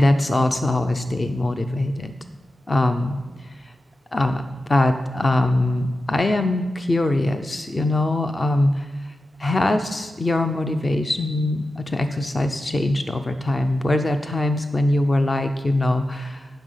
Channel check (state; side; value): normal; both; correlation 0.92